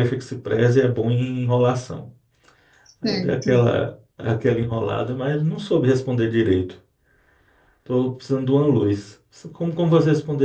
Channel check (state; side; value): identical; both; correlation 1.00